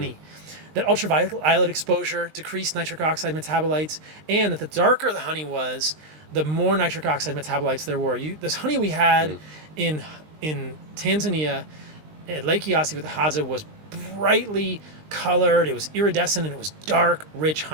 That ultraviolet exposure decreased nitric oxide metabolites, and that the darker the honey was, the more nitric oxide metabolites there were. This honey we had in Tanzania at Lake Eyasi with the Hadza was brightly colored, it was iridescent, and it was dark, rich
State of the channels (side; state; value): left; late; 20 ms